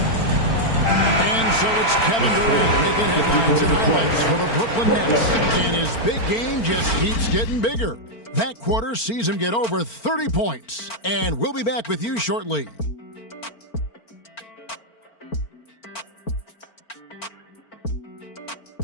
And so it's Kevin Durant making headlines and highlights for the Brooklyn Nets. And his big game just keeps getting bigger. That quarter sees him get over 30 points. And we'll be back with you shortly.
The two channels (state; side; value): late; right; 4.4 ms